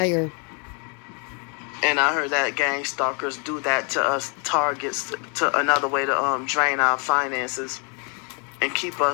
And I heard that gang stalkers do that to us targets, to another way to drain our finances and keep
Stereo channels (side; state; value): right; quieter; 37.5 dB